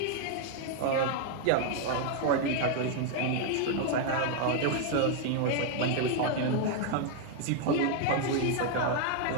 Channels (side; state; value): both; different; correlation 0.00